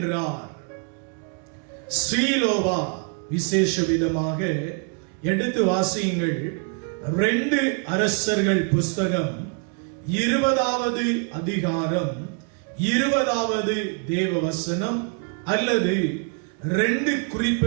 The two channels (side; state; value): left; quieter; 38.2 dB